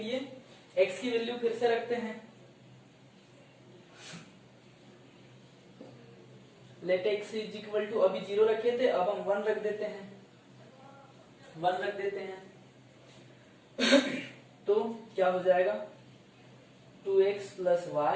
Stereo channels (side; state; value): both; identical; correlation 1.00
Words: x की वैल्यू फिर से रखते हैं, let x is equal to, अभी 0 रखे थे अब हम 1 रख देते हैं, 1 रख देते हैं तो क्या हो जाएगा 2x plus